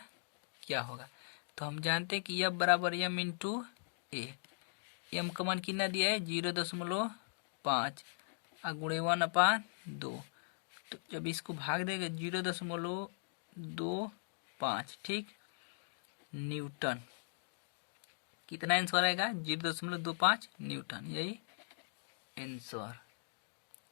क्या होगा। तो हम जानते हैं कि यह बराबर m इंटू ए। एम का मान कितना दिया है 0.5 और गुणे 1/2। तो जब इसको भाग देंगे 0.25, ठीक, न्यूटन। कितना आंसर आएगा 0.25 न्यूटन, यही आंसर।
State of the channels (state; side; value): silent; right; digital silence